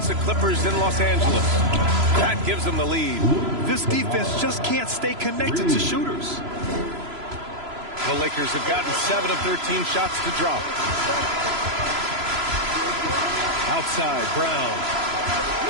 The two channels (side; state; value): left; late; 3.0 ms